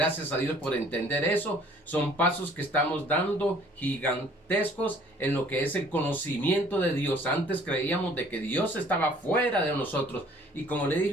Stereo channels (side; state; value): both; normal; correlation 0.56